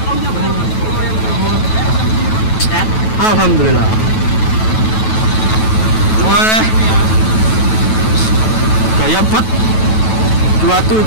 Alhamdulillah. Wah, gaya bet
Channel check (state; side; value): late; right; 9.2 ms